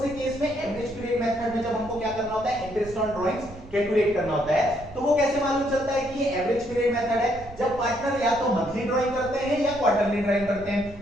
से केस में, एवरेज पीरियड मेथड में, जब हमको क्या करना होता है इंटरेस्ट ऑन ड्राइंग्स कैलकुलेट करना होता है। तो वो कैसे मालूम चलता है कि ये एवरेज पीरियड मेथड है, जब पार्टनर या तो मंथली ड्राइंग करते हैं या क्वार्टरली ड्राइंग करते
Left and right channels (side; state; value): right; noise; rumble, 17 dB below the sound